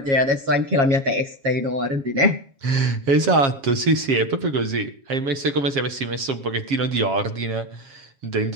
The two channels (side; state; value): left; late; 7.3 ms